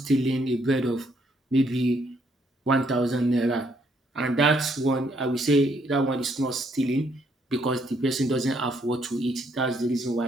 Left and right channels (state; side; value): normal; both; correlation 0.71